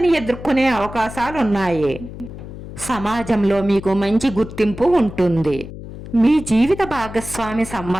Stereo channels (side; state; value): left; noise; hum, 12 dB below the sound